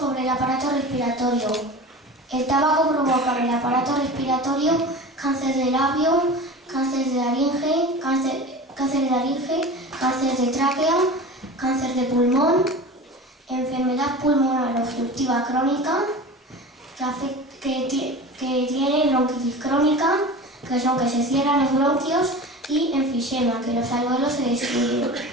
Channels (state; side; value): normal; both; correlation 0.34